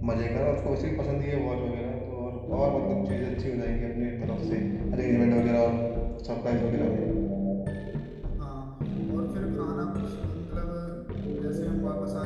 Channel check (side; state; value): both; identical; correlation 1.00